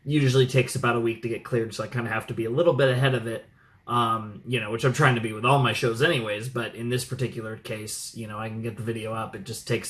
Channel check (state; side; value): identical; both; correlation 1.00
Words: usually takes about a week to get cleared, so I kind of have to be a little bit ahead of it. Which I'm trying to be with all my shows anyways, but in this particular case, I can get the video up. It just